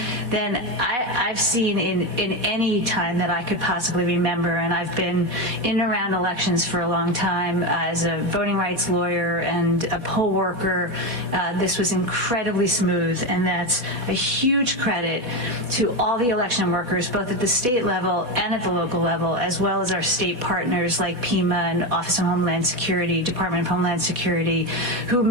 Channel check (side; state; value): left; late; 4.0 ms